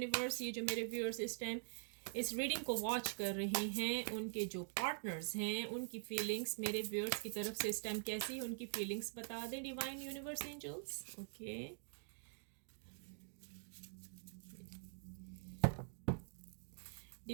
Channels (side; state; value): left; silent; digital silence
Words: ये जो मेरे व्यूअर्स इस टाइम इस रीडिंग को वॉच कर रहे हैं, उनके जो पार्टनर्स हैं, उनकी फीलिंग्स मेरे व्यूअर्स की तरफ से इस टाइम कैसी है, उनकी फीलिंग्स बता दें. Divine universe angels. Okay,